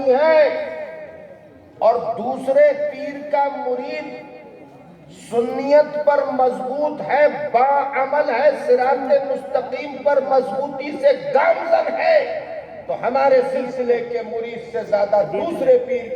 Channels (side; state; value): both; identical; correlation 1.00